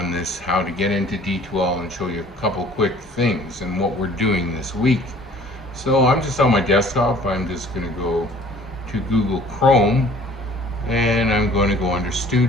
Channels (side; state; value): both; normal; correlation 0.52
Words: this how to get into D2L and show you a couple quick things and what we're doing this week. So I'm just on my desktop. I'm just going to go to Google Chrome, and I'm going to go under